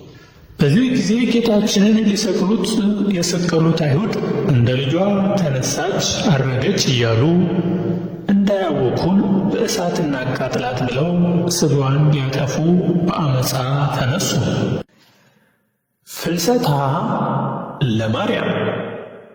በዚህ ጊዜ ጌታችንን ሊሰቅሉት የሰቀሉት አይሁድ እንደ ልጇ ተነሳች፣ አረገች እያሉ እንዳያወኩን በእሳት እናቃጥላት ብለው ሥጋዋን ሊያጠፉ በአመፃ ተነሱ። ፍልሰታ ለማርያም።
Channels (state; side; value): identical; both; correlation 1.00